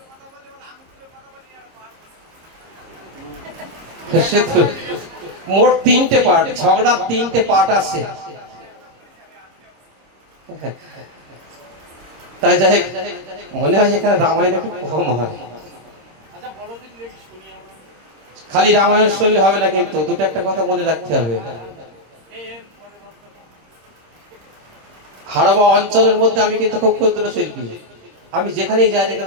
সে তো মোট 3টে পার্ট, ঝগড়ার 3টে পার্ট আছে। তাই যাই হোক, মনে হয় এখানে রামায়ণ একটু কম হয়। খালি রামায়ণ শুনলে হবে না, কিন্তু দুটো একটা কথা মনে রাখতে হবে। হাড়োয়া অঞ্চলের মধ্যে আমি কিন্তু খুব ক্ষুদ্র শিল্পী। আমি যেখানেই যাই না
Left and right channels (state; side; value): late; left; 26 ms